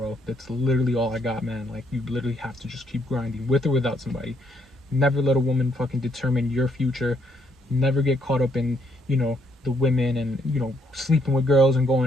That's literally all I got, man. Like, you literally have to just keep grinding with or without somebody. Never let a woman fucking determine your future. Never get caught up in, the women and, sleeping with girls and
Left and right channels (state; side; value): normal; both; correlation 0.72